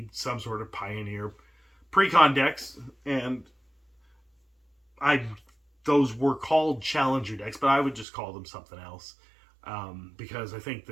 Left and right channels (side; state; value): left; drops out; at 8.1 s